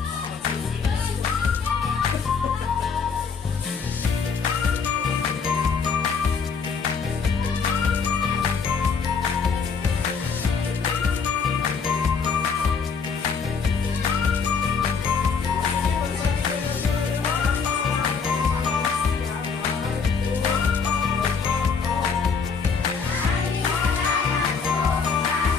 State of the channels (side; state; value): right; quieter; 5.6 dB